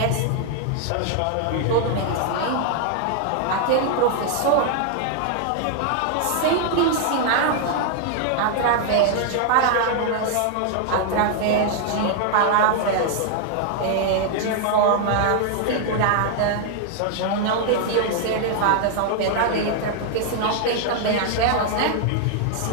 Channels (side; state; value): both; different; correlation 0.00